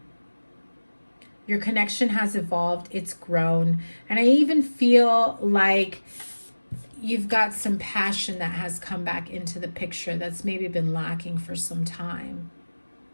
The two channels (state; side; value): inverted; both; correlation -1.00